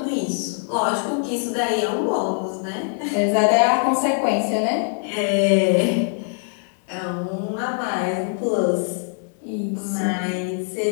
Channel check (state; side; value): silent; right; 56 dB below the other